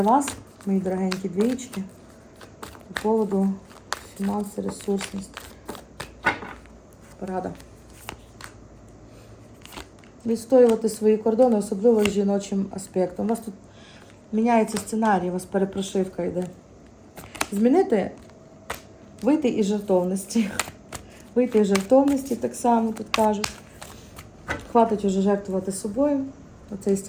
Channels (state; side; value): identical; both; correlation 1.00